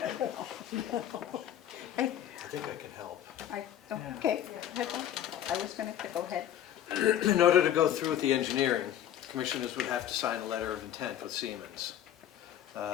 I think I can help. Okay, I was going to go ahead. In order to go through with the engineering, commissioners would have to sign a letter of intent with Siemens.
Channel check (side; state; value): right; quieter; 11.0 dB